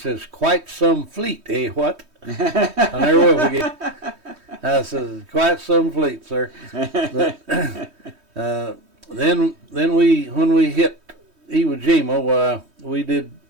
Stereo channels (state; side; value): late; left; 3.2 ms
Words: quite some fleet, eh, what? I never will forget. I said, quite some fleet, sir. But then when we hit Iwo Jima, we did